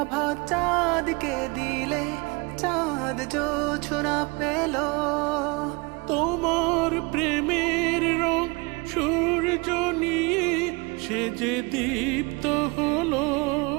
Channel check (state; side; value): quieter; left; 27.2 dB